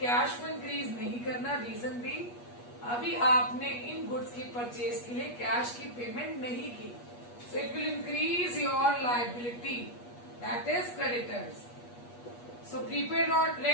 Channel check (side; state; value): right; late; 8.4 ms